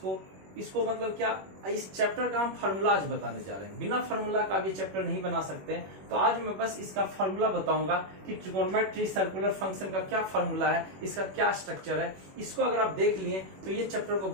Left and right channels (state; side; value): late; left; 21 ms